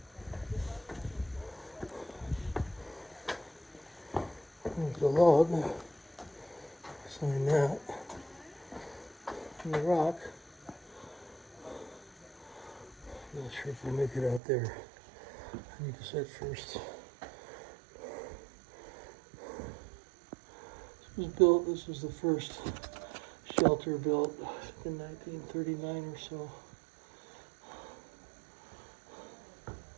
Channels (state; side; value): drops out; left; at 14.4 s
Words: There's the log. Sign that. And the rock. Not sure if we'll make it out there. I need to set first. This was the first shelter built in 1939 or so.